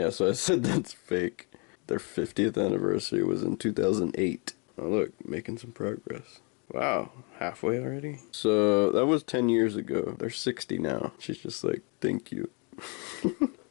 so I said that's fake. Their 50th anniversary was in 2008. Oh, look, making some progress. Wow, halfway already? So, that was 10 years ago. They're 60 now. She's just like, thank you.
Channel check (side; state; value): right; quieter; 33.7 dB